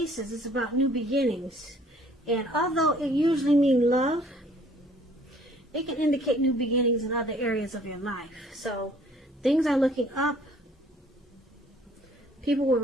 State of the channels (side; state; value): both; normal; correlation 0.57